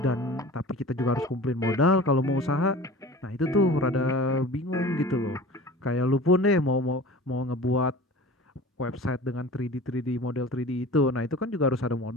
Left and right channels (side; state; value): both; normal; correlation 0.40